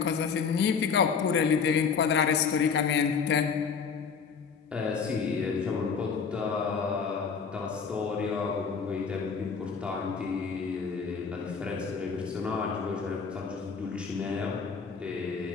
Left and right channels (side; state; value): right; quieter; 5.9 dB